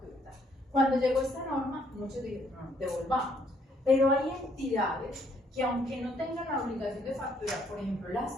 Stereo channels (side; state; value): both; normal; correlation 0.67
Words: Tal. Cuando llegó esta norma, muchos dijeron, no, devolvamos. Pero hay entidades que aunque no tengan la obligación de facturar, por ejemplo, las